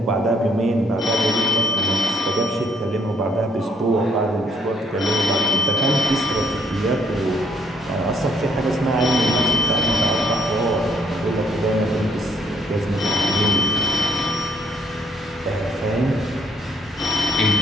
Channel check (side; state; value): both; normal; correlation 0.67